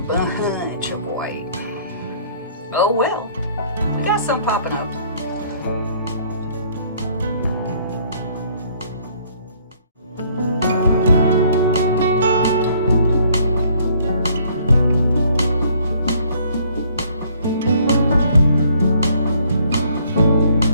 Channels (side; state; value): both; inverted; correlation -0.62